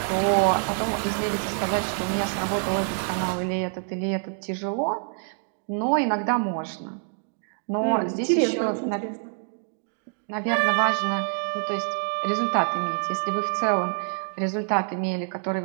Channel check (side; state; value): left; silent; 58 dB below the other